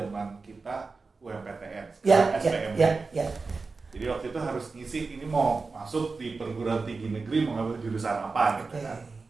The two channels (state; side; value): quieter; left; 4.2 dB